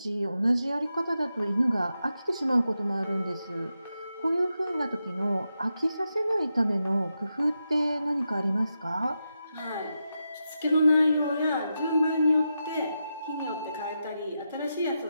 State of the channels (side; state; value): both; inverted; correlation -0.87